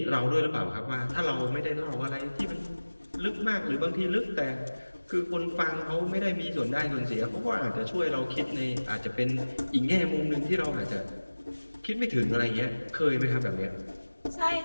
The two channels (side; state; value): both; inverted; correlation -1.00